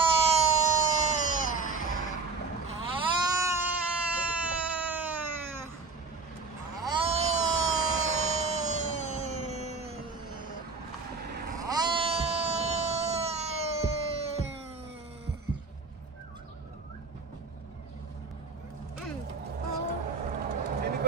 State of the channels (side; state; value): left; quieter; 4.3 dB